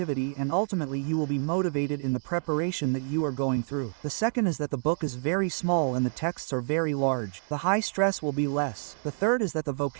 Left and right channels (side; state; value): left; silent; 57 dB below the other